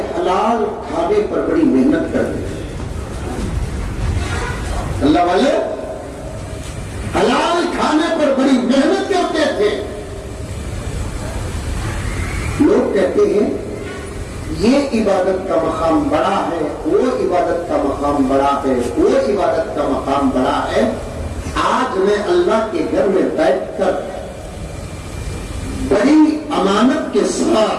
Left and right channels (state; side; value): identical; both; correlation 1.00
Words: حلال کھانے پر بڑی محنت کرتے ہیں، اللہ والے حلال کھانے پر بڑی محنت کرتے تھے۔ لوگ کہتے ہیں یہ عبادت کا مقام بڑا ہے، وہ عبادت کا مقام بڑا ہے، وہ عبادت کا مقام بڑا ہے۔ آج میں اللہ کے گھر میں بیٹھ کر بڑی امانت کے